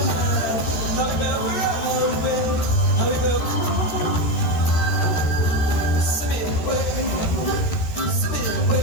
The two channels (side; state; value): right; late; 13 ms